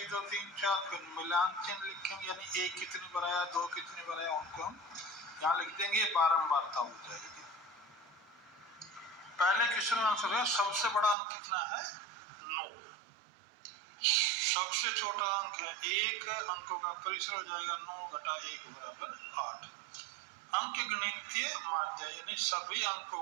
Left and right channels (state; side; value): drops out; left; at 11.2 s